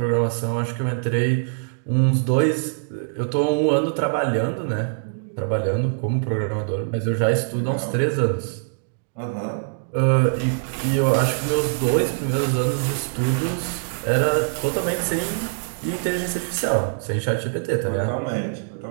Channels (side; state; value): left; silent; digital silence